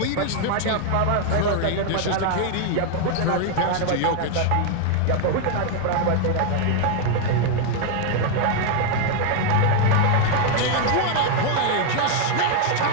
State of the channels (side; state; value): both; different; correlation 0.00